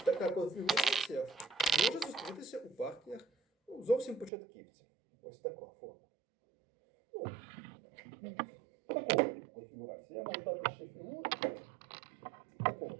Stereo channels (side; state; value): left; drops out; at 4.3 s